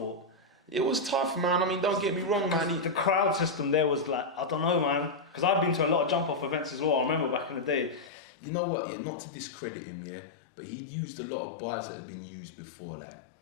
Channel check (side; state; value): right; drops out; at 8.1 s